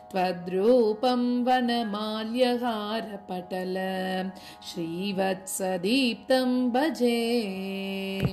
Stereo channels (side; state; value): both; identical; correlation 1.00